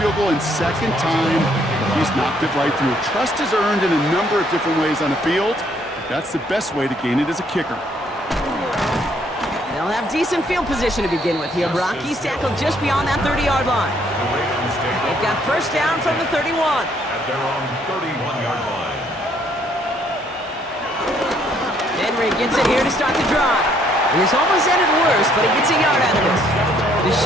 field goal, and 2nd time he's knocked it right through. Trust is earned in a number of different ways on the field. That's the best way to gain it as a kicker. They'll have decent field position to begin with here, Brock. He's tackled just beyond that 30-yard line. The Ravens take They've got 1st down from the 31. at their own 31-yard line. Henry gets it here to start the drive. And this almost ended worse, but he gets a yard out of it.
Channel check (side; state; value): both; normal; correlation 0.67